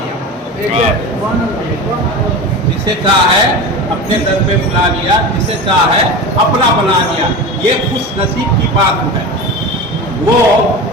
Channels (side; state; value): both; normal; correlation 0.28